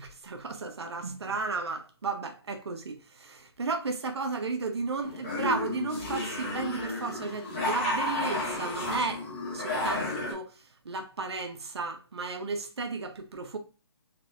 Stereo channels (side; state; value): both; normal; correlation -0.06